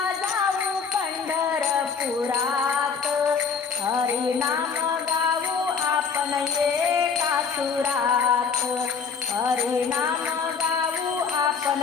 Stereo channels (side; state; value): right; quieter; 5.9 dB